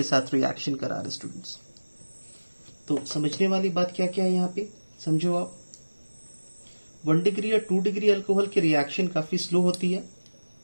साथ रिएक्शन करा रहे स्टूडेंट्स। तो समझने वाली बात क्या क्या है यहाँ पे, समझो आप। 1 डिग्री या 2 डिग्री अल्कोहल की रिएक्शन काफी स्लो होती है।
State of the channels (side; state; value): both; inverted; correlation -1.00